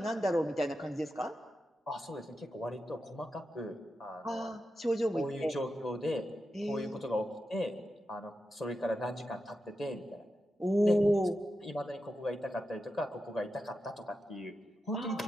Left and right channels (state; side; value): normal; both; correlation 0.89